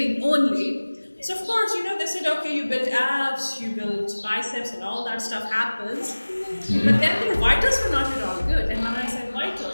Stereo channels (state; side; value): inverted; both; correlation -1.00